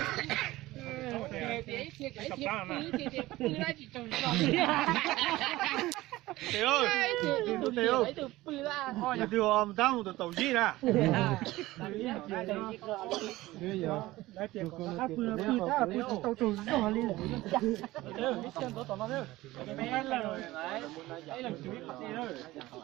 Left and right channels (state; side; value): quieter; left; 17.9 dB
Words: Tiểu ơi, Tiểu thôi nhà Tiểu ông tao một tàu gì nè. Bây giờ đã tiền của nó tàu trù nó đi.